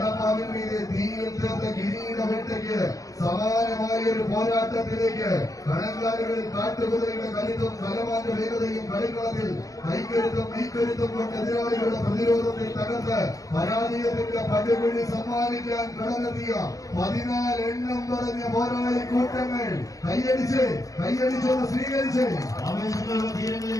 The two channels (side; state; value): right; late; 0.17 ms